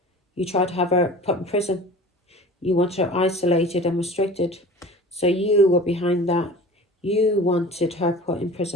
You tried to have her put in prison. You wanted her isolated and restricted. So you were behind that. You wanted her put in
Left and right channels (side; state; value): both; normal; correlation 0.40